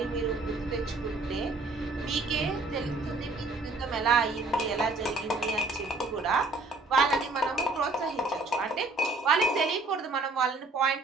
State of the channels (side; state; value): left; quieter; 3.3 dB